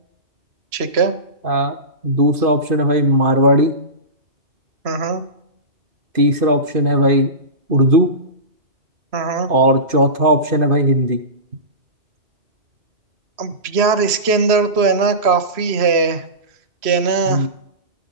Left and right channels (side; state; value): left; late; 3.0 ms